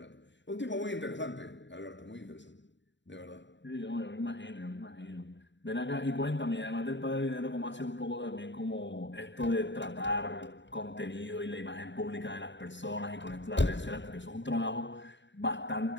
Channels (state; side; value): late; right; 0.53 ms